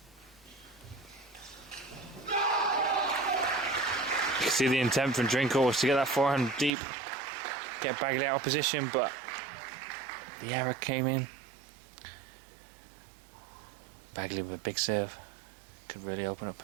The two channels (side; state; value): left; drops out; at 6.7 s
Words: See the intent from Drinkhall was to get that forehand deep, get Bagley out of position, but the error came in. Bagley with a big serve could really open up